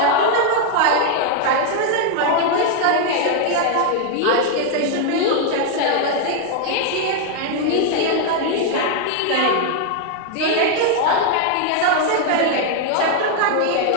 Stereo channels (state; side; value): different; both; correlation 0.00